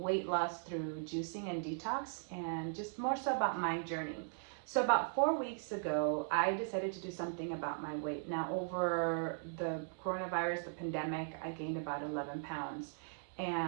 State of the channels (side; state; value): left; silent; digital silence